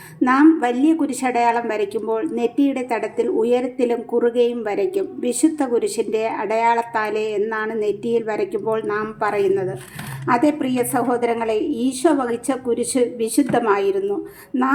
നാം വലിയ കുരിശടയാളം വരയ്ക്കുമ്പോൾ നെറ്റിയുടെ തടത്തിൽ ഉയരത്തിലും കുറുകയും വരയ്ക്കും. വിശുദ്ധ കുരിശിൻ്റെ അടയാളത്താലേ എന്നാണ് നെറ്റിയിൽ വരയ്ക്കുമ്പോൾ നാം പറയുന്നത്. അതേ പ്രിയ സഹോദരങ്ങളെ, ഈശോ വഹിച്ച കുരിശ് വിശുദ്ധമായിരുന്നു.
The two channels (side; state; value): both; identical; correlation 1.00